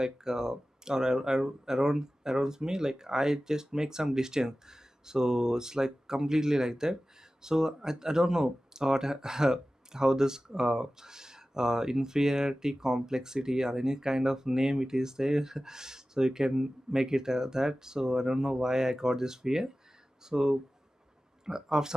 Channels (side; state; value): both; normal; correlation 0.96